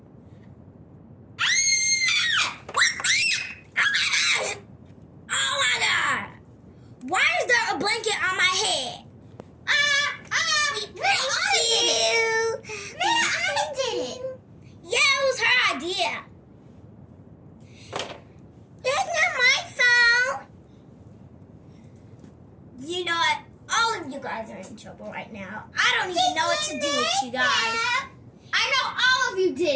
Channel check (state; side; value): identical; both; correlation 1.00